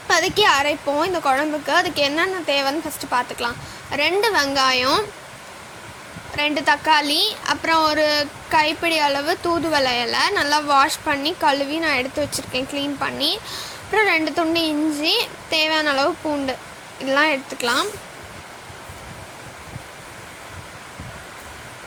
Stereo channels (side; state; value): both; identical; correlation 1.00